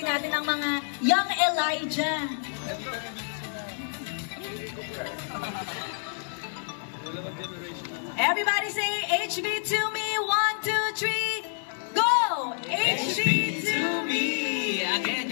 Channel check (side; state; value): right; silent; digital silence